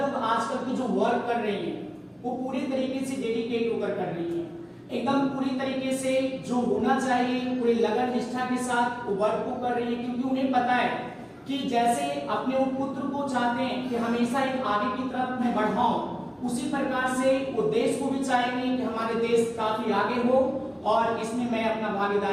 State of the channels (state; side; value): identical; both; correlation 1.00